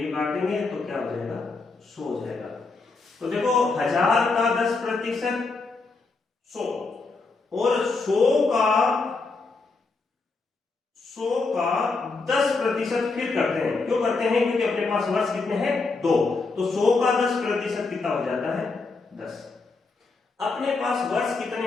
काट देंगे तो क्या हो जाएगा, 100 हो जाएगा। तो देखो 1000 का 10% 100 और 100 का 10% फिर करते हैं। क्यों करते हैं? क्योंकि अपने पास वर्ष कितने हैं, 2। तो 100 का 10% कितना हो जाता है, 10। अपने पास वर्ष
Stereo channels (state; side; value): quieter; right; 4.0 dB